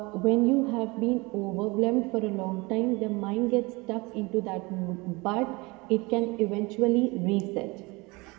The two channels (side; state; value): left; quieter; 25.0 dB